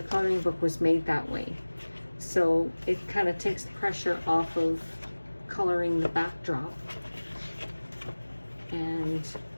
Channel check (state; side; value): inverted; both; correlation -1.00